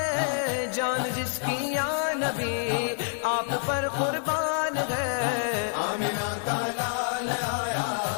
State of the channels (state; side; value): silent; right; 60 dB below the other